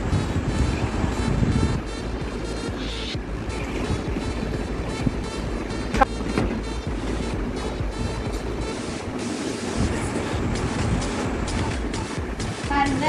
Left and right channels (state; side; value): identical; both; correlation 1.00